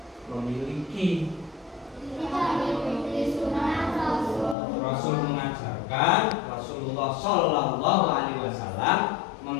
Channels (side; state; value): right; drops out; at 4.5 s